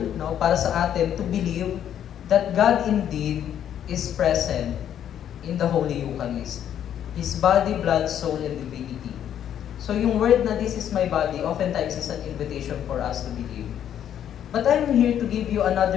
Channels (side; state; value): right; quieter; 10.0 dB